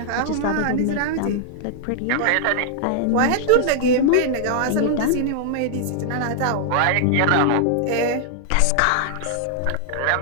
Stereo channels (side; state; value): both; different; correlation -0.01